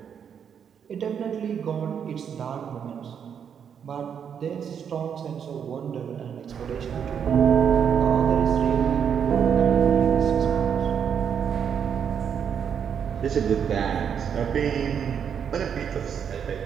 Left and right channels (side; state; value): left; quieter; 7.8 dB